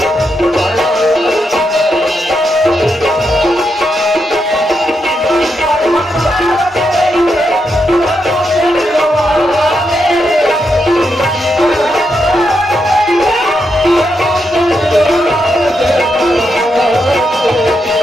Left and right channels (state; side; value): normal; both; correlation 0.83